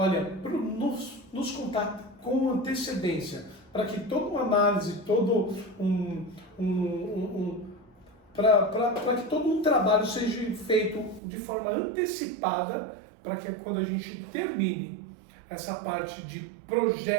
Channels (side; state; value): left; drops out; at 11.2 s